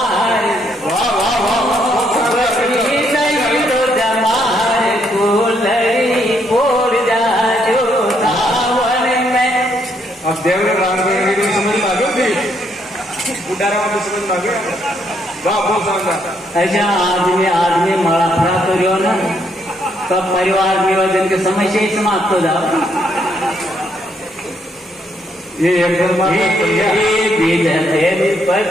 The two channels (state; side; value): normal; both; correlation 0.73